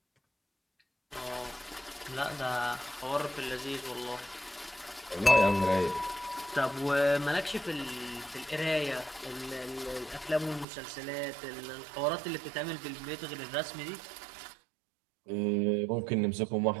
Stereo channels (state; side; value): drops out; left; at 10.7 s